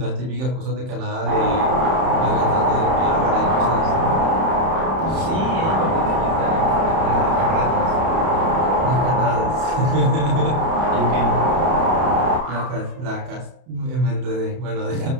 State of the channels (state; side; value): late; left; 31 ms